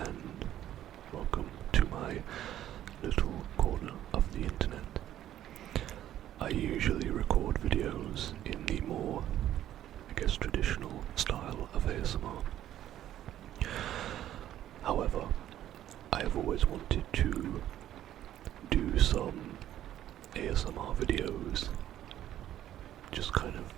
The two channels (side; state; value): left; quieter; 12.1 dB